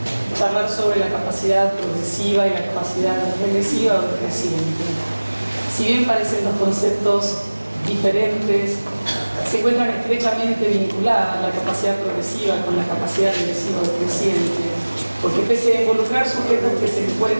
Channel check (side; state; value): both; inverted; correlation -1.00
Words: charlar sobre la capacidad progresiva y la capacidad regresiva o creciente. Si bien parecen dos conceptos diferentes, se encuentran estrechamente vinculadas la capacidad progresiva con la capacidad regresiva o creciente, porque pese a involucrar sujetos que se